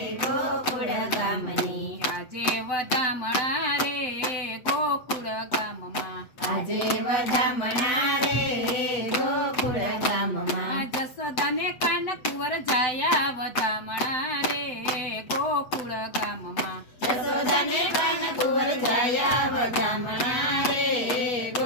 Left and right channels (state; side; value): late; right; 7.9 ms